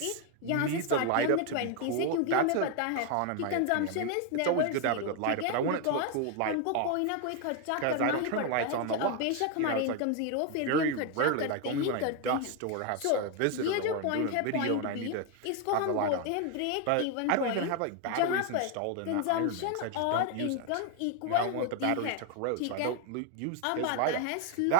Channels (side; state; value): both; different; correlation 0.01